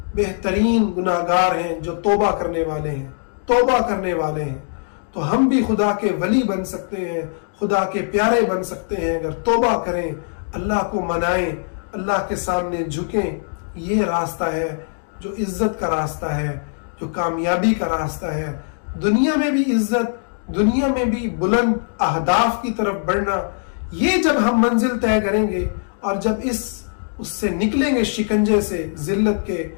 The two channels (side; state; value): right; silent; digital silence